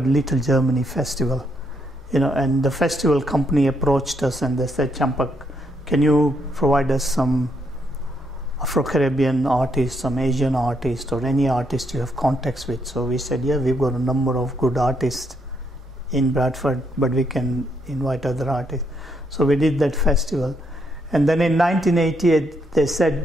Little Germany Festival, and the festival company approached us and they said, Champak, can you provide us some Afro-Caribbean artists, some Asian artists, or any artist you have contacts with? So we said, yeah, we've got a number of good artists in Bradford, but we can invite other artists. So we did that festival. And then in 1988, they said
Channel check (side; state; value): both; normal; correlation 0.75